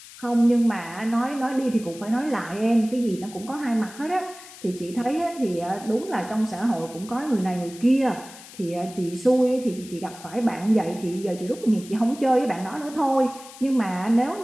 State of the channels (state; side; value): noise; left; hiss, 18 dB below the sound